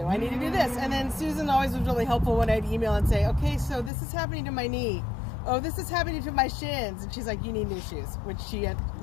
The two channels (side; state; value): right; drops out; at 3.9 s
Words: I need to do this. And then Susan always was really helpful when I'd email and say, okay, so this is happening to my knee. Oh, this is happening to my shins. And she's like, you need new shoes,